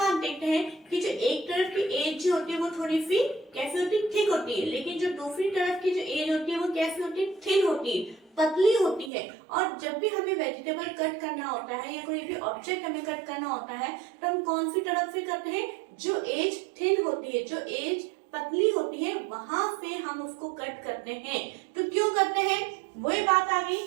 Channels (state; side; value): drops out; left; at 9.1 s